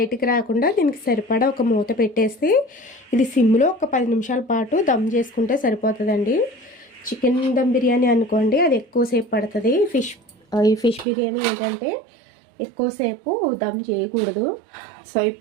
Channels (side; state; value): left; drops out; at 11.1 s